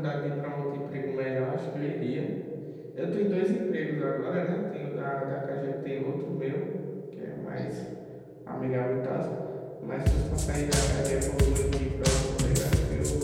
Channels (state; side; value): identical; both; correlation 1.00